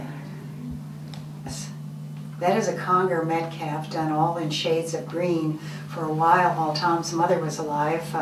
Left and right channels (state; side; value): identical; both; correlation 1.00